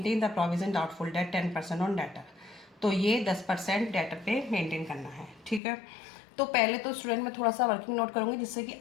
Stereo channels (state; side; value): drops out; right; at 5.6 s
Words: the provision doubtful debt 10% on debtor. तो ये 10% डेटर पे मेंटेन करना है, ठीक है। तो पहले तो स्टूडेंट में थोड़ा सा वर्किंग नोट करूंगी जिससे कि